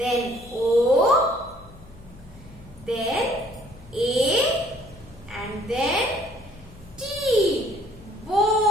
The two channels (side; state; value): left; noise; hum, 20 dB below the sound